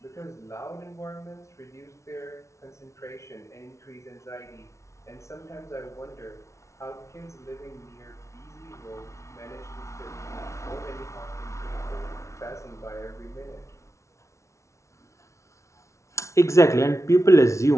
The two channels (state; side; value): late; right; 0.14 ms